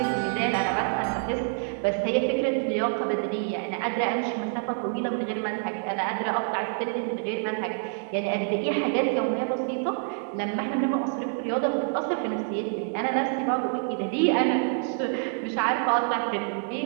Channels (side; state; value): left; silent; 60 dB below the other